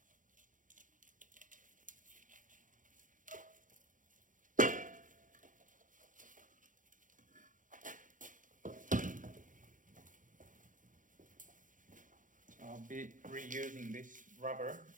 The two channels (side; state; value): left; late; 0.38 ms